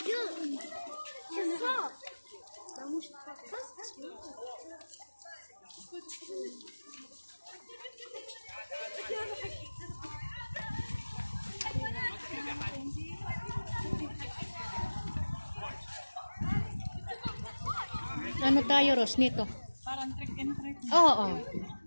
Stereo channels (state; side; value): inverted; both; correlation -1.00